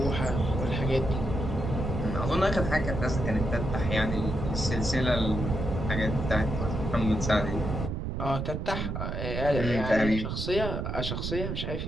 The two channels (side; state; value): right; noise; rumble, 3 dB below the sound